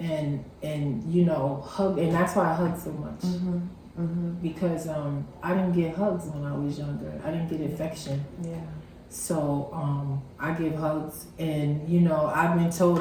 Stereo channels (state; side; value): identical; both; correlation 1.00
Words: and you know, hug, and that's why I hug so much, because I didn't get hugs when I was younger. I didn't get affection. So I give hugs, and you know, I've been told